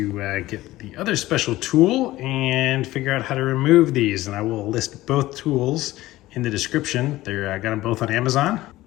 get the other special tool and figure out how to remove these, and I will list both tools in the description. I got them both on Amazon.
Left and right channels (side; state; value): right; quieter; 16.8 dB